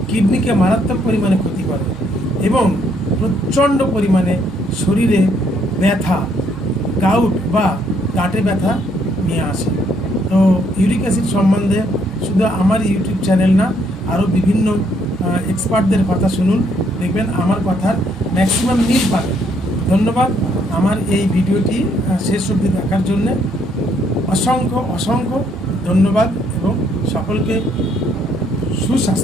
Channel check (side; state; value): both; normal; correlation 0.69